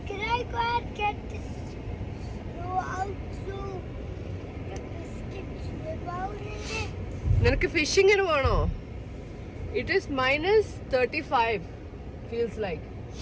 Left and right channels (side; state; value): both; identical; correlation 1.00